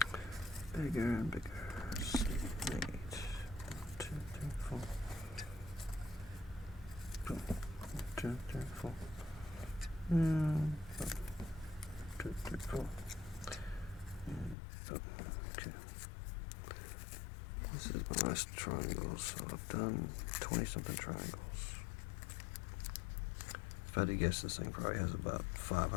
Bigger and bigger. 6, 8, 1, 2, 3, 4. Boom. 1, 2, 3, 4. 1, 2, 3, 4. Okay. This is my last triangle, so I've done 20 something triangles. If I had to guess, this thing probably has about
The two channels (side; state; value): right; drops out; at 14.6 s